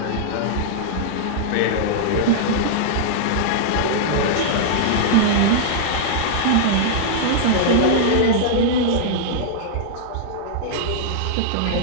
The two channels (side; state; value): both; different; correlation -0.02